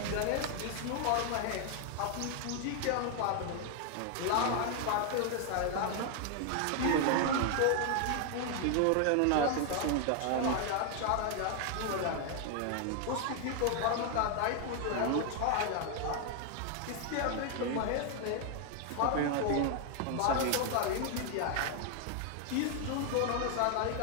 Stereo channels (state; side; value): different; both; correlation 0.00